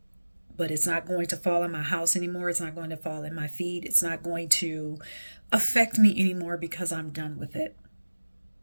but it's not going to fall in my house anymore. It's not going to fall in my feet. It's not going to affect me anymore because I'm done with it.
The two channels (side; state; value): both; inverted; correlation -1.00